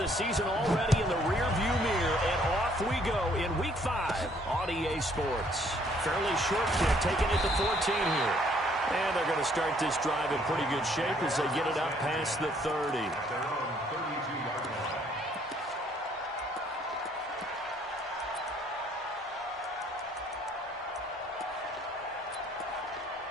season already in the rearview mirror, and off we go in Week 5 on EA Sports. Fairly short kick, taking it to 14 here. And they're going to start this drive in pretty good shape as they get it up past the 30.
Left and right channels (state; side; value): normal; both; correlation 0.64